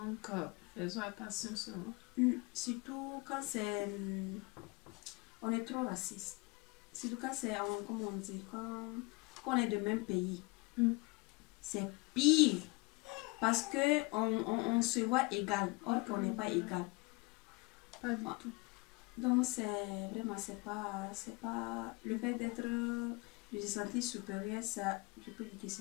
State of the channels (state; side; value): quieter; right; 26.0 dB